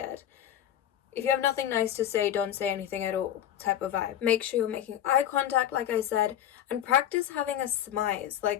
If you have nothing nice to say, don't say anything at all type of vibe. Make sure you're making eye contact, like I said, and practice having a smize.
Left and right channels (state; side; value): quieter; right; 10.8 dB